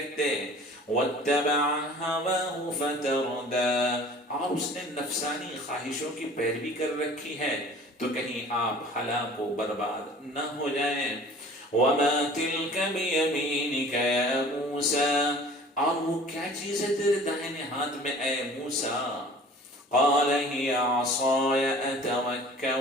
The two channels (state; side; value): normal; both; correlation 0.46